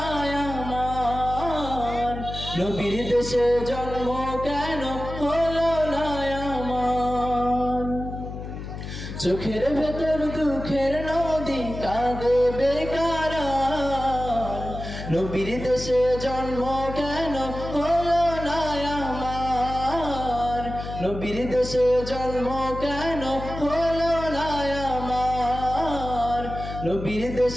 আমার, নবীর দেশে জন্ম কেন হলো না আমার। চোখের ভেতর দুঃখের নদী কাঁদে বেকারা, নবীর দেশে জন্ম কেন হলো না আমার, নবীর দেশে জন্ম কেন হলো না আমার, নবীর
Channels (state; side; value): noise; left; hum, 9 dB below the sound